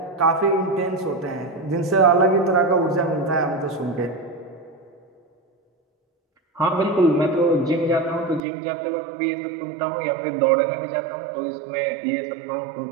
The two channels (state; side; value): drops out; left; at 8.4 s